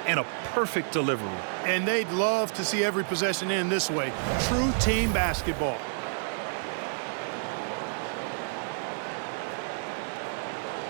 and a perfect delivery. And they'd love to see every possession end this way. True team basketball.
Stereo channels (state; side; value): silent; left; digital silence